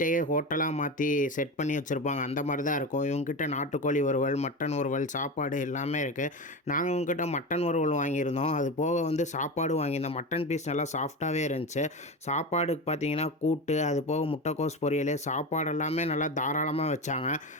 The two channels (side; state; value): both; normal; correlation 0.23